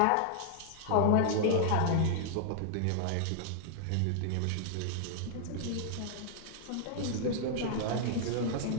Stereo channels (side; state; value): both; different; correlation -0.01